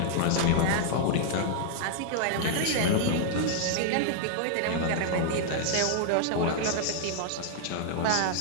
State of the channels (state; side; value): different; both; correlation -0.01